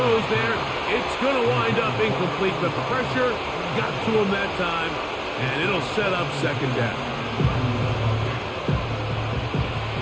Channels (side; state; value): both; identical; correlation 1.00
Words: there. It's going to wind up incomplete. The pressure got to him that time, and it'll set up 2nd down.